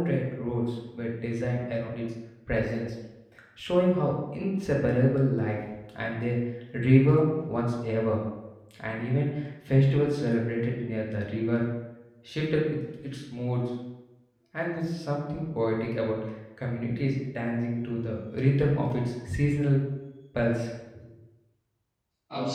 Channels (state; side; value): identical; both; correlation 1.00